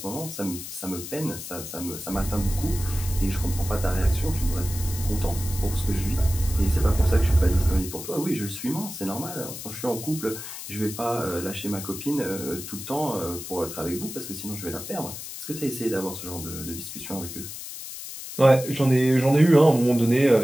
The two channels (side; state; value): left; noise; hiss, 10 dB below the sound